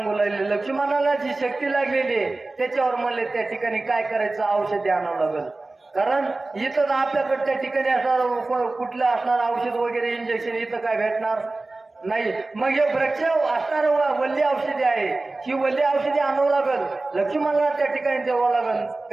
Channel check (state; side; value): quieter; left; 3.2 dB